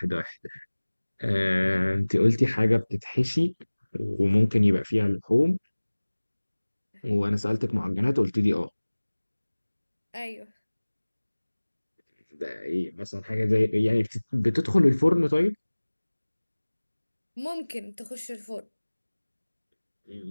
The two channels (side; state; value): both; inverted; correlation -1.00